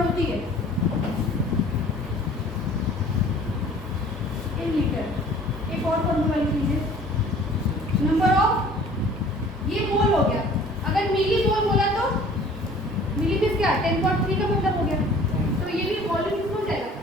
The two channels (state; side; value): normal; both; correlation 0.49